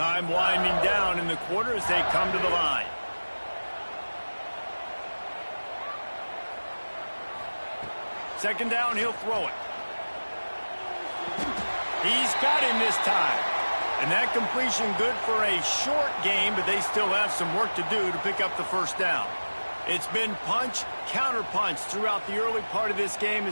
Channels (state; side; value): inverted; both; correlation -1.00